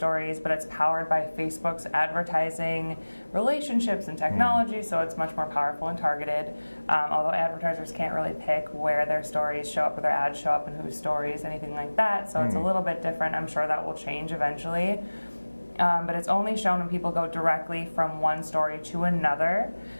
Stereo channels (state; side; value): inverted; both; correlation -1.00